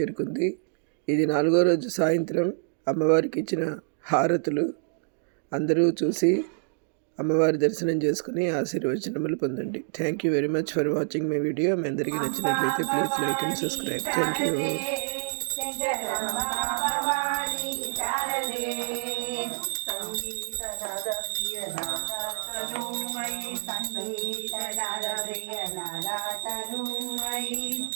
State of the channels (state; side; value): silent; left; digital silence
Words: ఇది 4వ రోజు సాయంత్రం అమ్మవారికి ఇచ్చిన హారతులు. అందరూ చూసి అమ్మవారి దర్శనం చేసుకుని ఆశీర్వచనములు పొందండి. Thank you very much for watching my video. మీ అందరికీ నచ్చినట్లయితే please like and subscribe. Thank you.